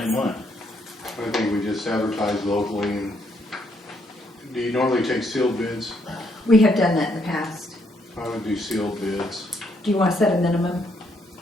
one. I think we just advertise locally, and do you normally take sealed bids? We have done that in the past. I would do sealed bids. Do you want to set a minimum?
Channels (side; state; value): both; normal; correlation 0.73